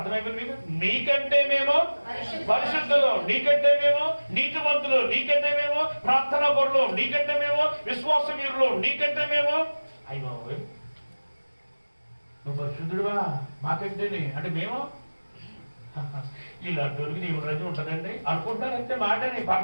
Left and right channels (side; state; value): both; inverted; correlation -1.00